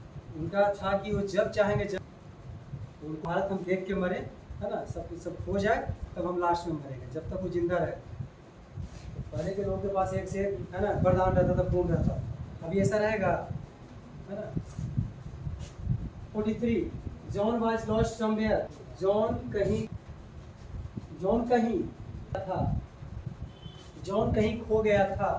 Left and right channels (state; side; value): identical; both; correlation 1.00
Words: उनका था कि वो जब चाहेंगे जब, भारत हम देख के मरे है ना, सब हो जाए तब हम लास्ट में मरेंगे, जब तक वो जिंदा रहे। तो पहले के लोगों के पास एक से एक है ना वरदान रहता था, पूर्ण रहता, अभी ऐसा रहेगा है ना। 43 John was lost somewhere, John कहीं था, जॉन कहीं खो गया था।